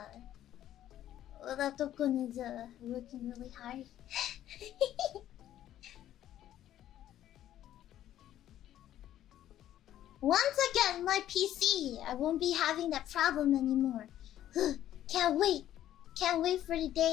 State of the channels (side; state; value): right; quieter; 12.2 dB